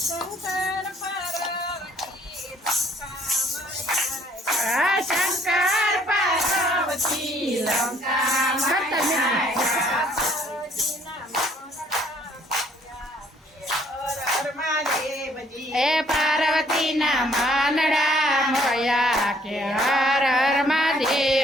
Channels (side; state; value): both; normal; correlation 0.63